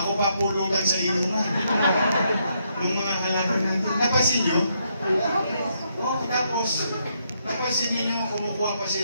papulutan sa inuman. Yung mga halaman natin. Napansin nyo? Oh, tapos, napansin niyo kumukuha pa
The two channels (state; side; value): inverted; both; correlation -0.76